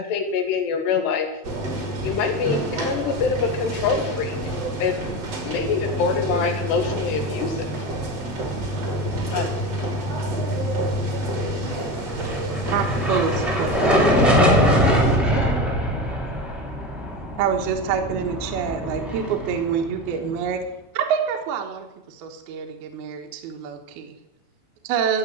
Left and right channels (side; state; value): both; normal; correlation 0.21